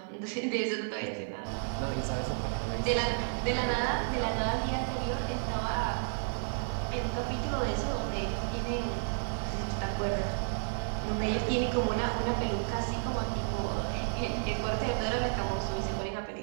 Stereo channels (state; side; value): silent; left; digital silence